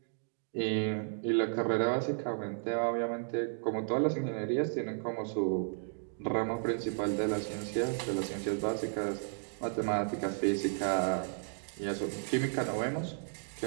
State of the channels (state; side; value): silent; left; digital silence